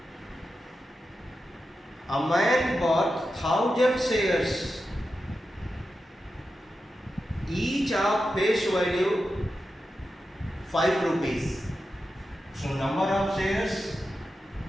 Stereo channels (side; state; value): both; normal; correlation 0.90